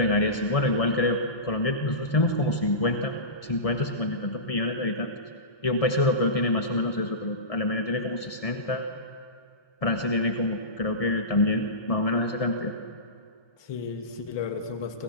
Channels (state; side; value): late; right; 1.7 ms